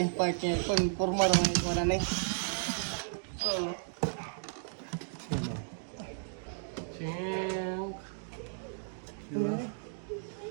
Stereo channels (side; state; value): left; silent; digital silence